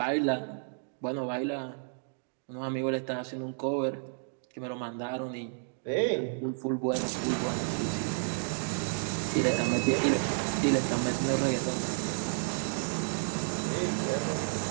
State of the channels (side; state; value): left; silent; digital silence